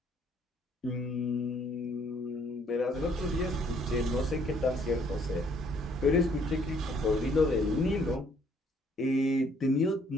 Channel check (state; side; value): normal; both; correlation 0.64